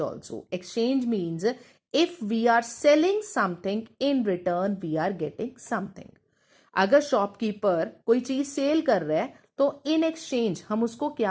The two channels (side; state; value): both; identical; correlation 1.00